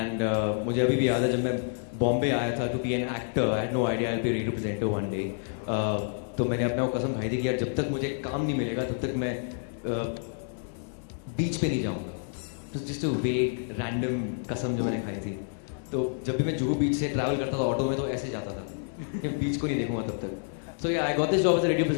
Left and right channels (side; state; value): right; silent; digital silence